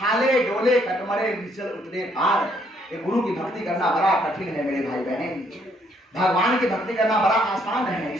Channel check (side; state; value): both; normal; correlation 0.69